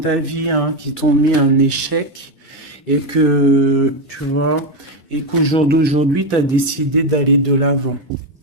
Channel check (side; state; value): both; normal; correlation 0.09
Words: vie qui t'ont mis un échec et que, tu vois, et qu'au jour d'aujourd'hui, tu as décidé d'aller de l'avant.